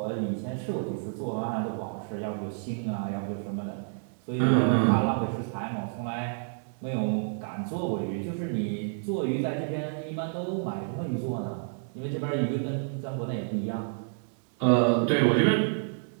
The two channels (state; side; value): silent; left; 58 dB below the other